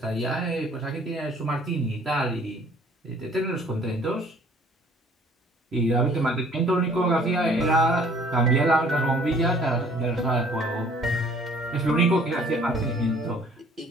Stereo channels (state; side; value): normal; both; correlation 0.56